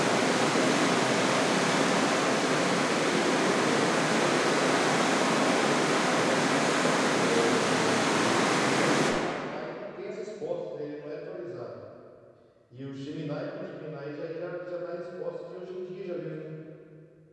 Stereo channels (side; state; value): both; identical; correlation 1.00